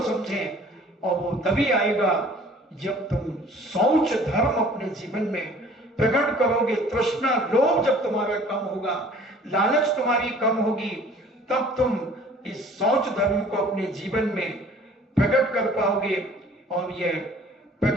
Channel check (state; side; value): normal; both; correlation 0.51